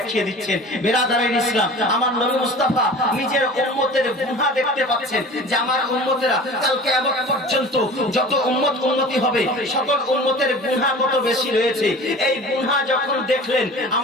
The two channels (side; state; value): both; normal; correlation 0.40